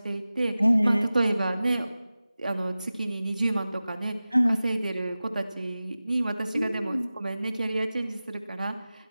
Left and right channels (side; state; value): both; inverted; correlation -0.96